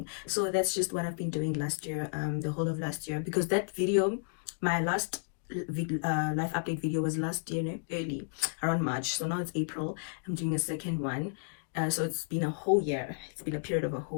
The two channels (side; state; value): right; silent; digital silence